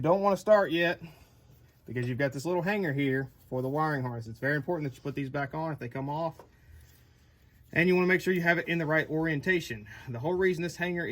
don't want to start yet because you've got this little hanger here for the wiring harness. It's very important that you put these back on if they come off. And you want to make sure you have it in the right orientation. The whole reason this hanger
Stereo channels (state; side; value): identical; both; correlation 1.00